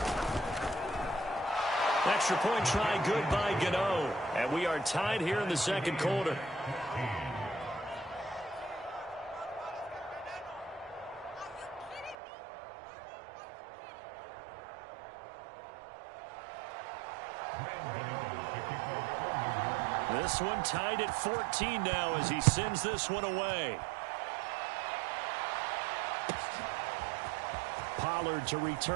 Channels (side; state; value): left; drops out; at 12.2 s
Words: Extra point try good by Gano. And we are tied here in the second quarter. This one tied at 14 now as he sends this one away. Pollard to